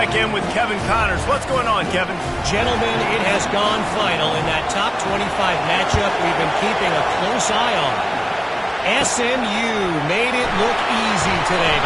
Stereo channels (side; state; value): both; identical; correlation 1.00